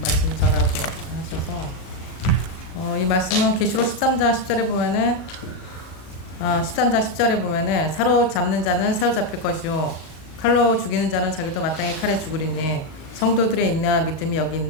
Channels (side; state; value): right; late; 38 ms